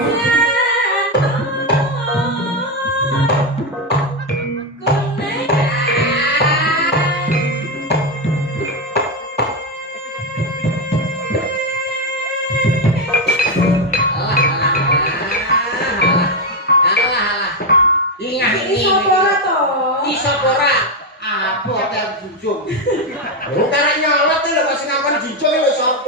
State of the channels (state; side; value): normal; both; correlation 0.08